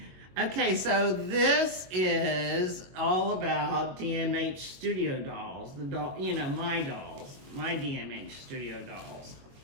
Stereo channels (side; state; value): left; late; 22 ms